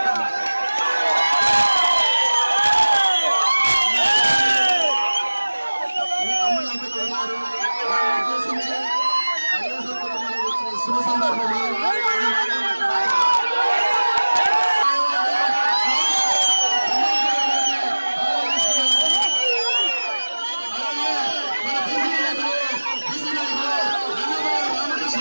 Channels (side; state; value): both; inverted; correlation -1.00